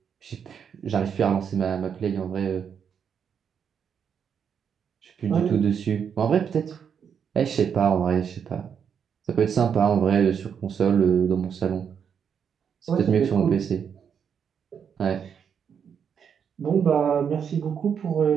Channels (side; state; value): left; quieter; 7.4 dB